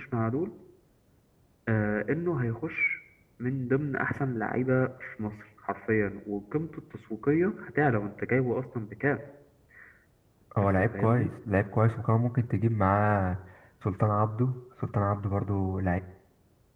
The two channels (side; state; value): both; identical; correlation 1.00